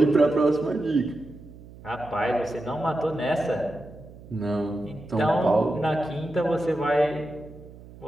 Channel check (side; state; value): right; noise; hum, 19 dB below the sound